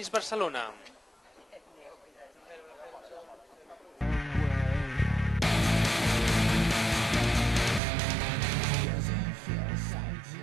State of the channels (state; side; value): drops out; left; at 7.8 s